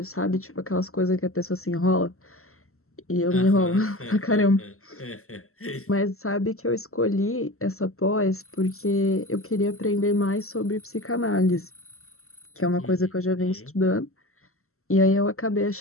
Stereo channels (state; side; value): late; right; 0.63 ms